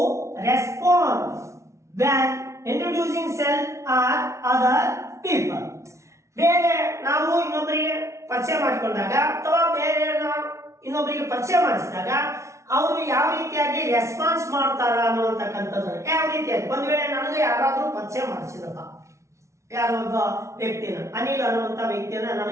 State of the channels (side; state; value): left; late; 0.14 ms